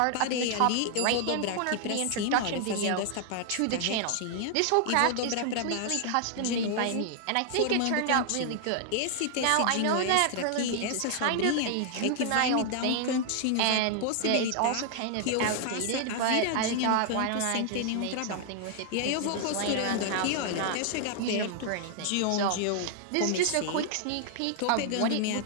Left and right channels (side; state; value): both; different; correlation 0.00